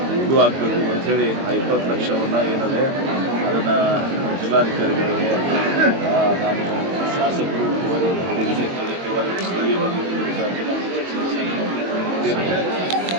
ಇದು ಆಗಬೇಕು ಅಂಥೇಳಿ ಆ 20 ಲಕ್ಷವನ್ನು ಏನಿದೆ ಅದನ್ನು ಜಿಲ್ಲಾಧಿಕಾರಿಗಳಿಗೆ ನಾನು ಶಾಸಕರು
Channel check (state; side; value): late; left; 22 ms